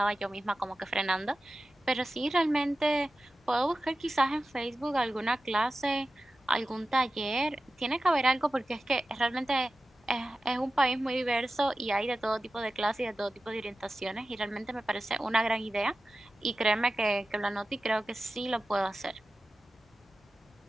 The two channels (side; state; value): both; normal; correlation 0.94